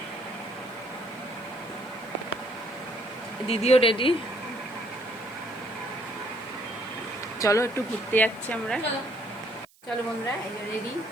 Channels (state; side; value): noise; right; hiss, 29 dB below the sound